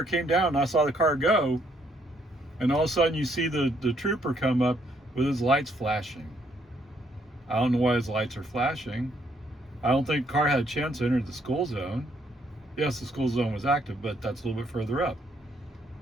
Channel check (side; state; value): both; normal; correlation 0.70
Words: came down, and I saw the car go, and all of a sudden you see the trooper come up with his lights flashing. I don't know why his lights are flashing. I don't think the car had a chance to enter the school zone. Yes, the school zone was active, but that's a little bit further up.